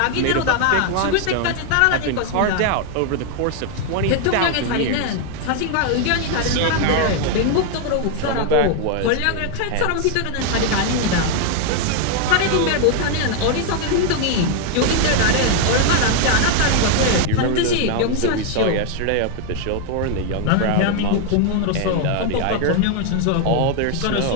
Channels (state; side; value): different; both; correlation 0.00